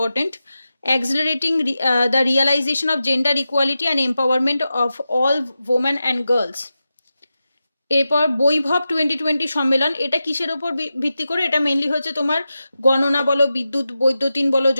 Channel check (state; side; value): inverted; both; correlation -0.91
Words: accelerating the realisation of gender equality and empowerment of all women and girls. এরপর বৈভব 2020 সম্মেলন, এটা কিসের ওপর ভিত্তি করে? এটা মেনলি হচ্ছে তোমার গণনা বলো, বিদ্যুৎ বৈদ্যুতিন বলো,